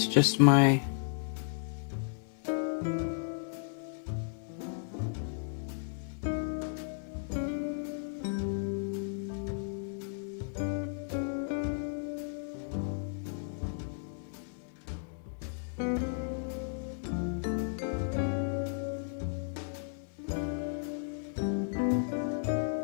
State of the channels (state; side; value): silent; right; digital silence